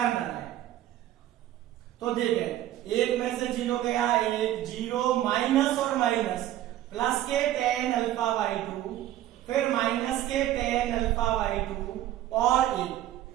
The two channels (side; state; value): left; quieter; 13.4 dB